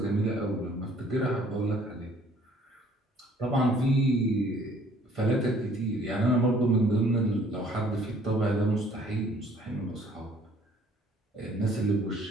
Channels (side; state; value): both; normal; correlation 0.58